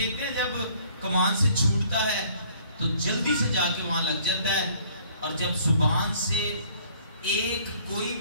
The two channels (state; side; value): inverted; both; correlation -0.58